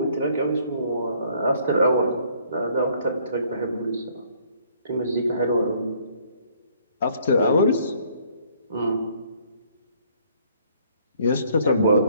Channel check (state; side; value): inverted; both; correlation -0.62